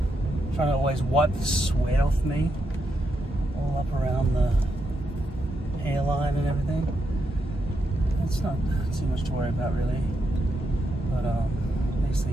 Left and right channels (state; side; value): normal; both; correlation 0.83